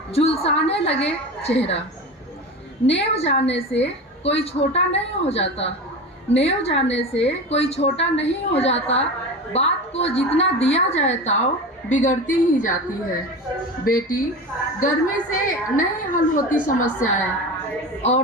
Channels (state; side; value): normal; both; correlation 0.28